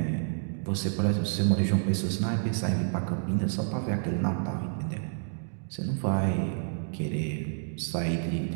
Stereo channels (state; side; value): silent; left; digital silence